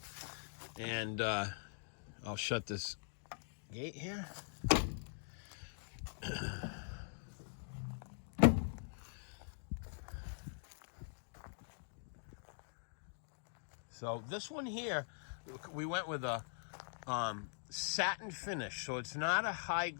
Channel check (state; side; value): silent; right; digital silence